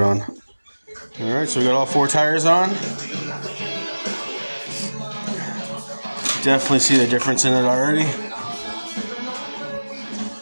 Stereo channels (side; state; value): both; inverted; correlation -1.00